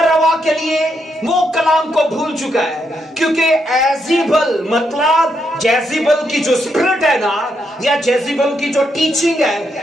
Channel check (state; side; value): normal; both; correlation 0.79